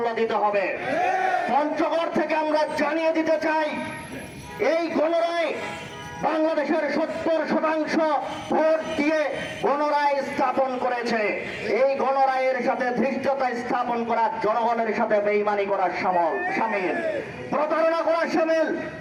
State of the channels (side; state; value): both; identical; correlation 1.00